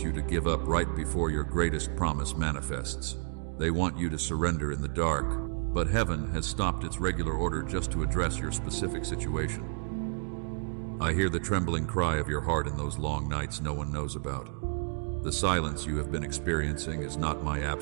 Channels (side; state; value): left; silent; digital silence